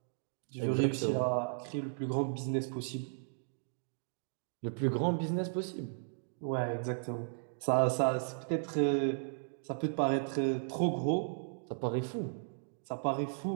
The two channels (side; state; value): left; silent; digital silence